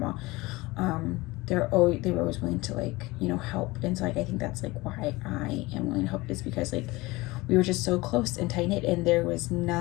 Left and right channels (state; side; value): quieter; right; 21.5 dB